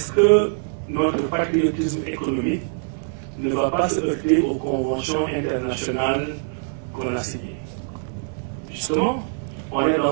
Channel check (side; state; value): left; silent; 63 dB below the other